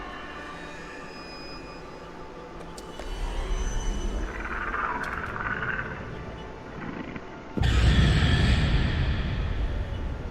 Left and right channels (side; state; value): both; identical; correlation 1.00